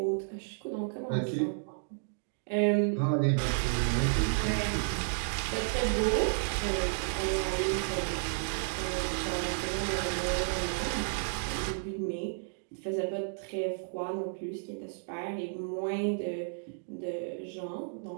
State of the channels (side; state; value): left; silent; digital silence